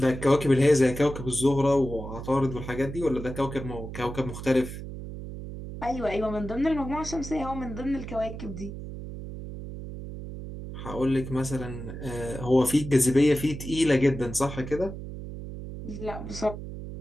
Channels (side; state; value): right; noise; hum, 9 dB below the sound